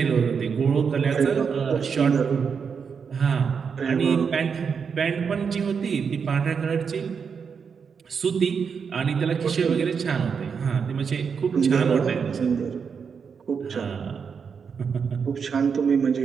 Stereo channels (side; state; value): left; quieter; 6.2 dB